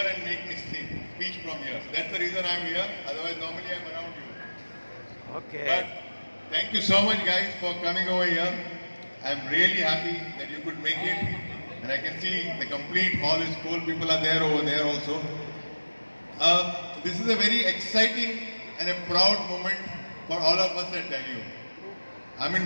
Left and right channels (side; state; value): both; inverted; correlation -1.00